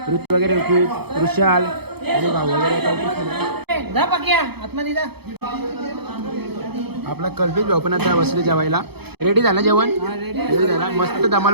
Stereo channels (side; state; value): left; late; 0.97 ms